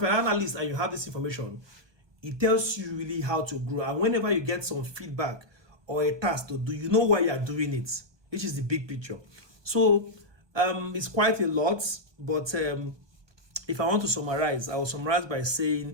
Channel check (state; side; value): late; left; 1.2 ms